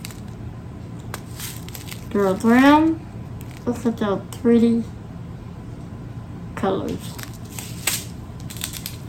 They're brown. Look at those pretty colors.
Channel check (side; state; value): both; identical; correlation 1.00